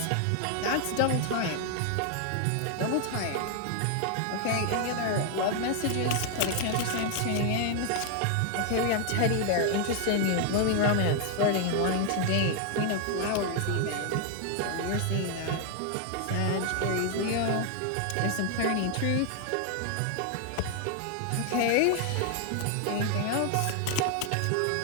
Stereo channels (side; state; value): both; different; correlation 0.00